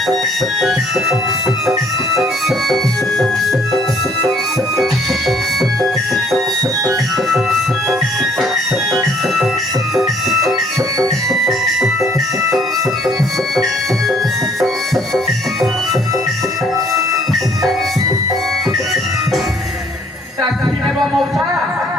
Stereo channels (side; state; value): both; normal; correlation 0.62